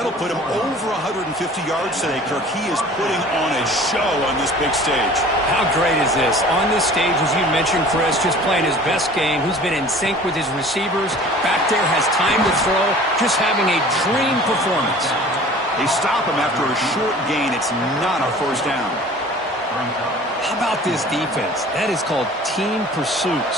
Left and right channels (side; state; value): both; normal; correlation 0.46